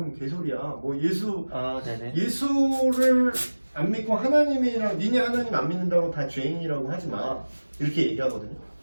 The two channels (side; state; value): both; inverted; correlation -1.00